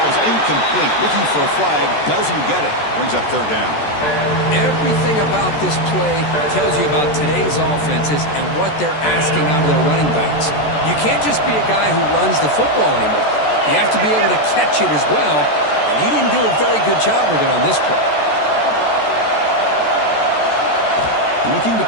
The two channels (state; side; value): late; right; 14 ms